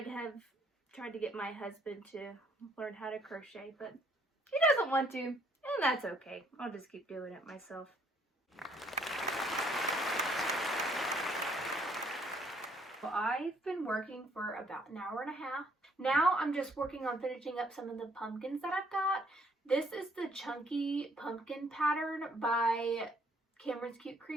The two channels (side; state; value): both; normal; correlation 0.66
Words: to get my husband to learn how to crochet, but he doesn't want to, and that's okay. I'll just keep doing it myself. Well, I've been working for about an hour and a half. Now I'm just working on finishing up some of the pumpkins that I've got. This is the Chunky Pumpkin pattern by Cameron's Cute